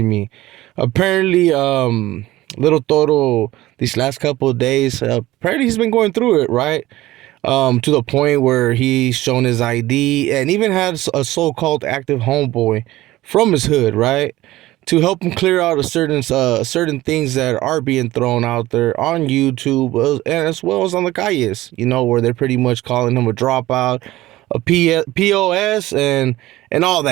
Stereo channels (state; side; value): quieter; left; 16.8 dB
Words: me. Apparently, little Toro these last couple of days, apparently he's been going through it, right? To the point where he's shown his ID and even had a so-called active homeboy from his hood, right, to help him clear out a certain things that are being thrown out there on YouTube and as well as on the calles, where they're pretty much calling him a dropout, POS, and all